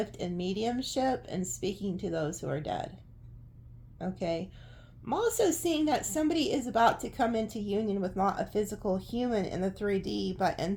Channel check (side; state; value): both; identical; correlation 1.00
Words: in mediumship and speaking to those who are dead. Okay. I'm also seeing that somebody is about to come into union with not a physical human in the 3D, but